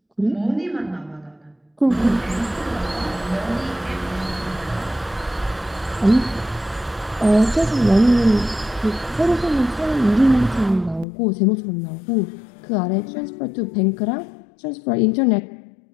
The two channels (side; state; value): right; drops out; at 11.1 s